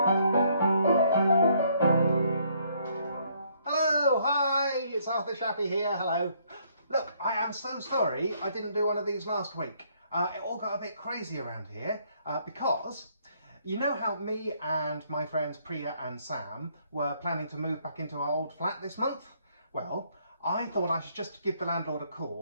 Hello, hi, it's Arthur Shappy here, hello. Look, I am so sorry I didn't do one of these last week. It all got a bit crazy around here because you know how me and my friends Priya and Sam were planning to move back into our old flat this month? Well, I thought I should just give the landlord a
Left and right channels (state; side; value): inverted; both; correlation -0.67